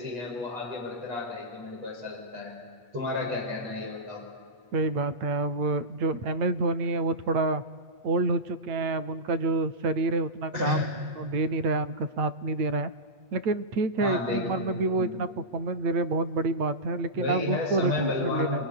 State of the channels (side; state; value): left; late; 8.4 ms